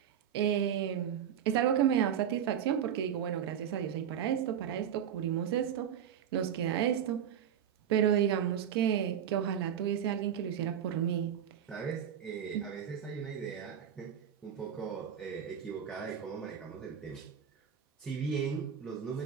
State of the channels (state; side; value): quieter; left; 9.0 dB